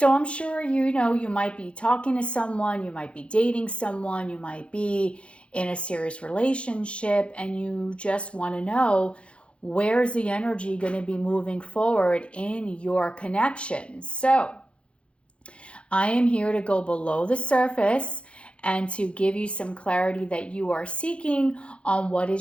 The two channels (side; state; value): right; late; 0.059 ms